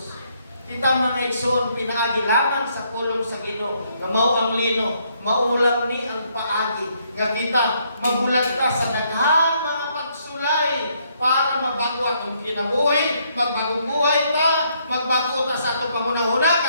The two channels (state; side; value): inverted; both; correlation -0.71